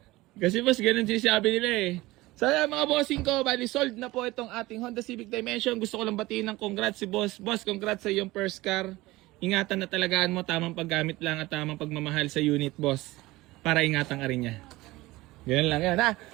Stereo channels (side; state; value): left; quieter; 19.4 dB